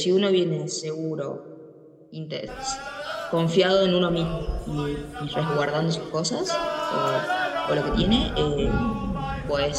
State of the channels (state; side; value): identical; both; correlation 1.00